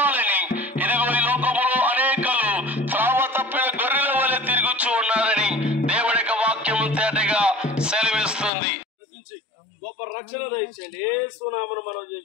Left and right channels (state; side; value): drops out; right; at 8.5 s